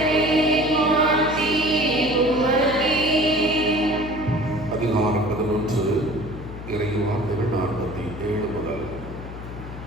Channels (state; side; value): noise; left; hum, 11 dB below the sound